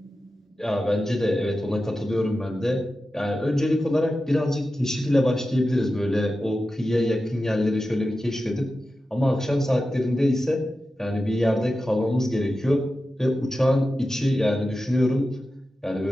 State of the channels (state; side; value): normal; both; correlation 0.92